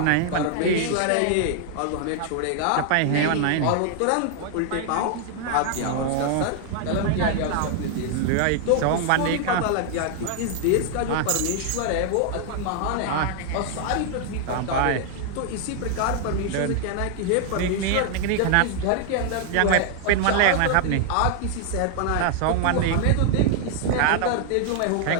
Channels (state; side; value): different; both; correlation 0.00